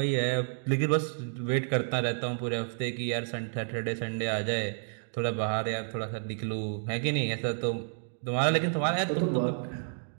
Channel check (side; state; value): left; silent; digital silence